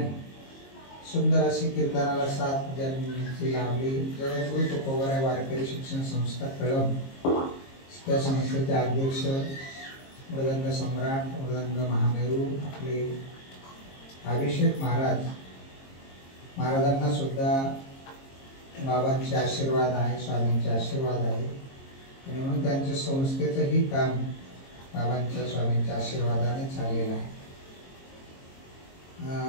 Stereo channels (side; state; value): right; late; 22 ms